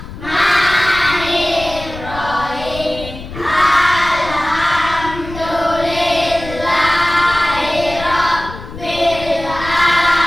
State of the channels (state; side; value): noise; left; rumble, 12 dB below the sound